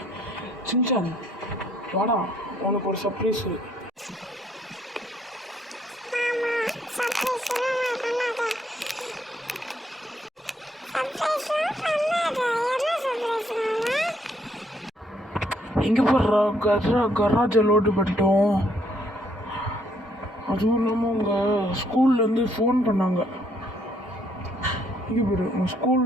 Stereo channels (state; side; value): normal; both; correlation 0.69